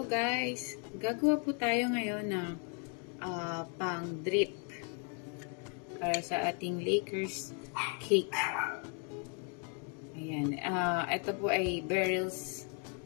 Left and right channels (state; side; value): quieter; right; 39.0 dB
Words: guys. Gagawa po tayo ngayon ng pang drip para sa ating Lakers cake. Ayan. Ito po ay Beryl's